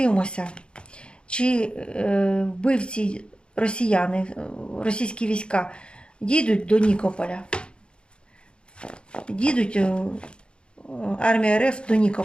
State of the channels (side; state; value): right; late; 0.054 ms